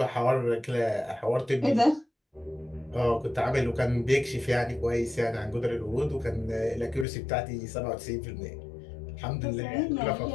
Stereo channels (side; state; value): right; drops out; at 7.1 s